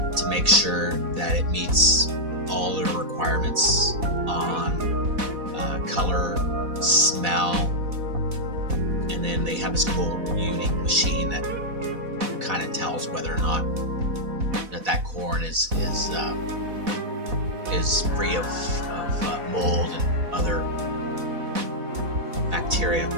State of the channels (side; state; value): left; late; 4.1 ms